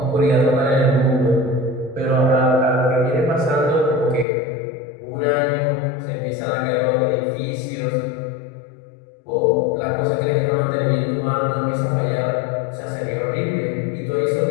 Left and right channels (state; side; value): drops out; right; at 4.2 s